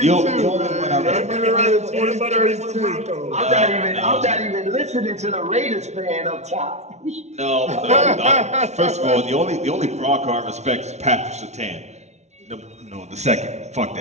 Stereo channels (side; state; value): left; late; 0.32 ms